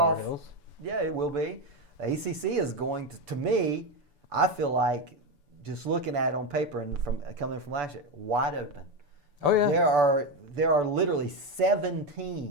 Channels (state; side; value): late; left; 6.9 ms